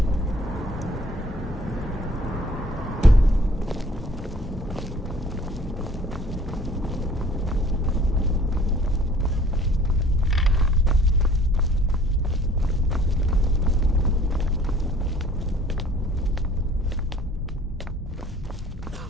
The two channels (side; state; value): both; normal; correlation 0.53